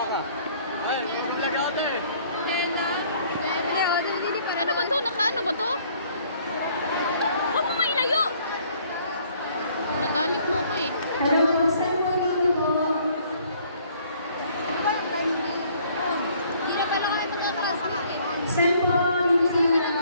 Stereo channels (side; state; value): both; inverted; correlation -0.60